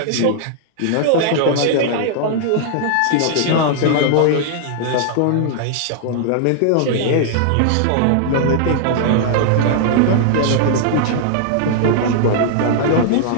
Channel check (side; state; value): both; different; correlation -0.01